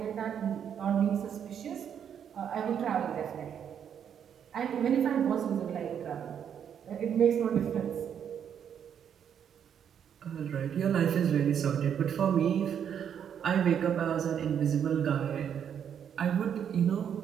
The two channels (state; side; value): quieter; left; 8.4 dB